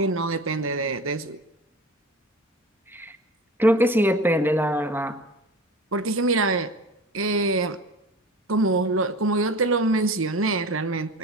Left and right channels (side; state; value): both; normal; correlation 0.36